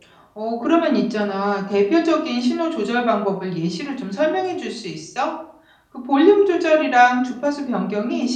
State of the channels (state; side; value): identical; both; correlation 1.00